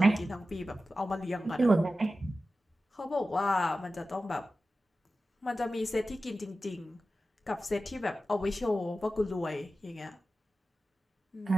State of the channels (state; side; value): normal; both; correlation 0.94